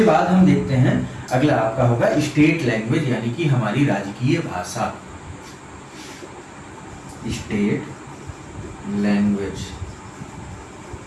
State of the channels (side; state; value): both; identical; correlation 1.00